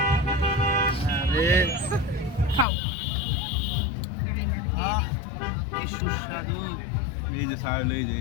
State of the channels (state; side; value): drops out; right; at 2.7 s